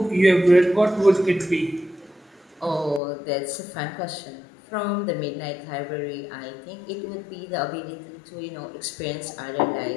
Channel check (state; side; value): drops out; right; at 3.0 s